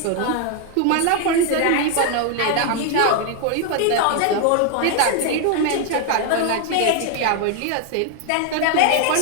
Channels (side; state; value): both; different; correlation 0.01